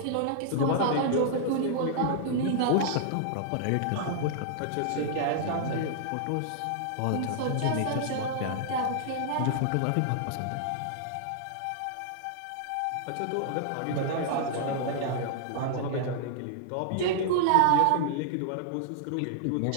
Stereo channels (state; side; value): different; both; correlation -0.01